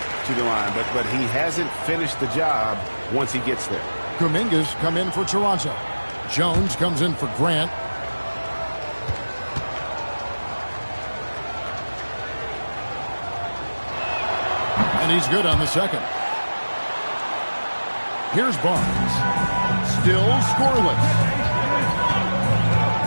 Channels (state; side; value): inverted; both; correlation -1.00